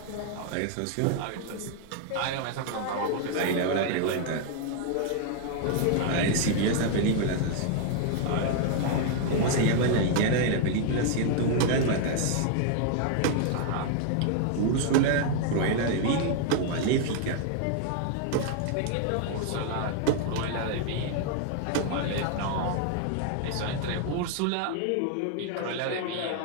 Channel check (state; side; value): different; both; correlation 0.00